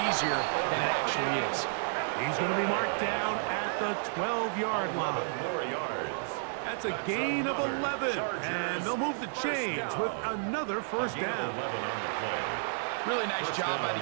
easier than it actually is. He's going to be marked down at the 12-yard line. More yards. That's a gain of 11, and they'll move the chains with another 1st down. Really nice job by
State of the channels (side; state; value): left; silent; 57 dB below the other